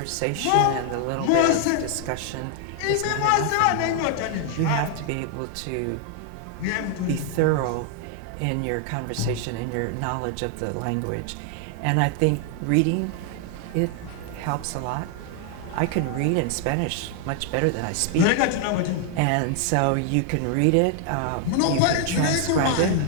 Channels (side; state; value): both; different; correlation 0.00